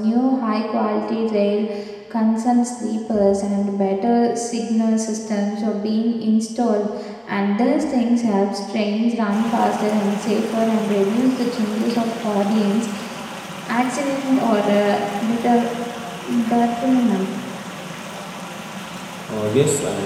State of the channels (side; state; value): both; identical; correlation 1.00